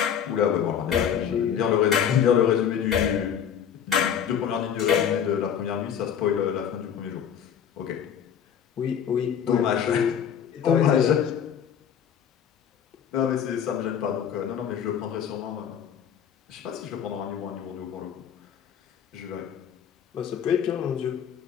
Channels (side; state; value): right; quieter; 8.5 dB